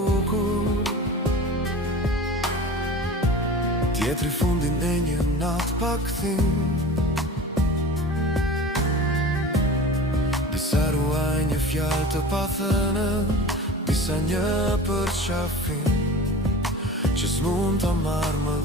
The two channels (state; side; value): normal; both; correlation 0.37